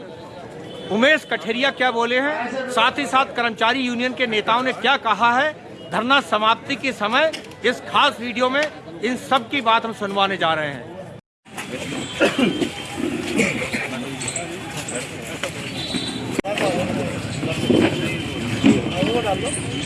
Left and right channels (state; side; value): identical; both; correlation 1.00